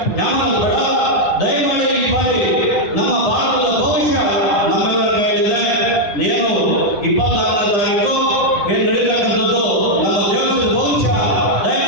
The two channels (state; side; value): late; right; 9.8 ms